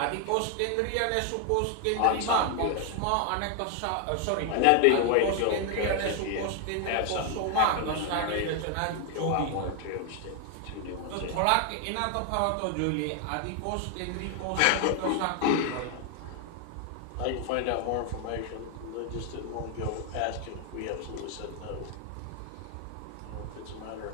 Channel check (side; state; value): both; different; correlation 0.00